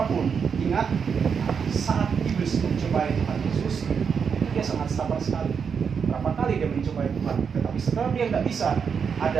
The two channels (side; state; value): left; quieter; 6.5 dB